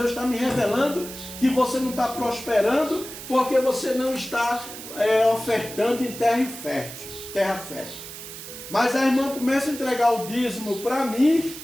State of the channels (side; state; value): right; noise; hiss, 12 dB below the sound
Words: está me revelando que você não está prosperando porque você não está ofertando em terra fértil. Mas a irmã começa a entregar o dízimo para mim,